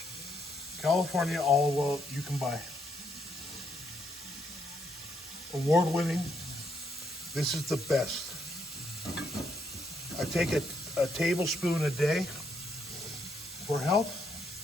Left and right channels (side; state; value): both; normal; correlation 0.74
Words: California olive oil you can buy. Award-winning. This is the best. I take a tablespoon a day for health.